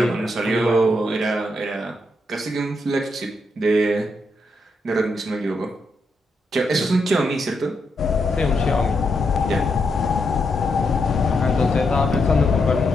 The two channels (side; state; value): both; normal; correlation 0.81